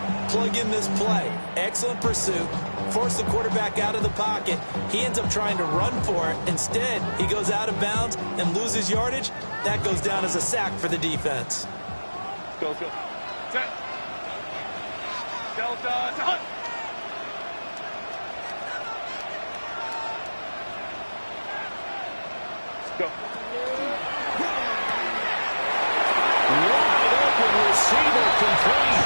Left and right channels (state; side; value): inverted; both; correlation -1.00